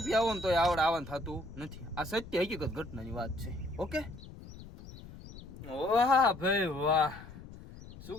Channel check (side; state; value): left; noise; rumble, 15 dB below the sound